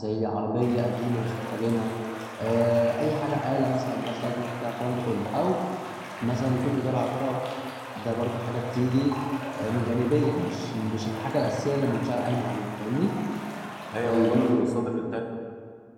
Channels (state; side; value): identical; both; correlation 1.00